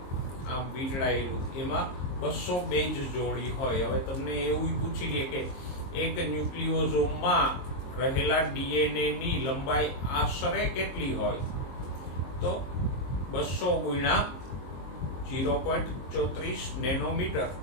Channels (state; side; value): late; right; 22 ms